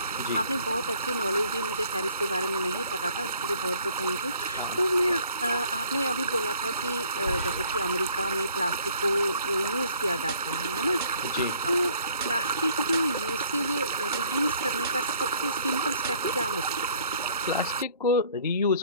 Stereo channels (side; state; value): both; inverted; correlation -0.59